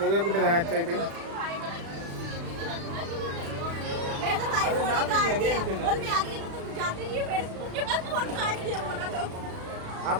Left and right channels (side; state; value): left; late; 36 ms